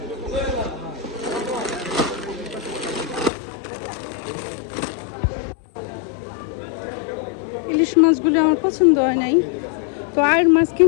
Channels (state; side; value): drops out; right; at 3.3 s